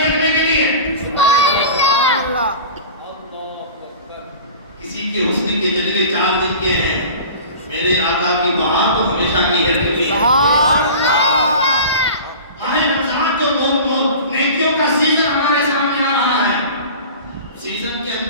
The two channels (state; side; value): inverted; both; correlation -0.38